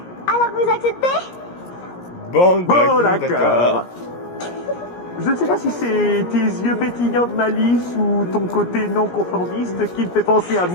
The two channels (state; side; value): late; right; 17 ms